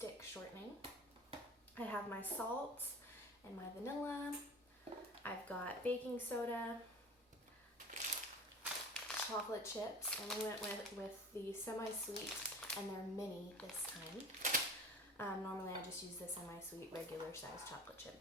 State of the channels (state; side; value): normal; both; correlation 0.38